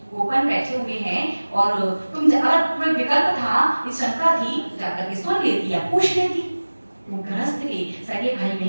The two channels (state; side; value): inverted; both; correlation -1.00